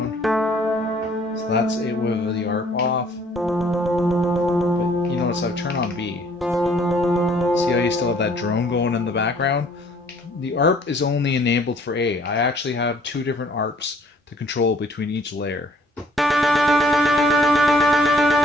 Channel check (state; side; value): normal; both; correlation 0.59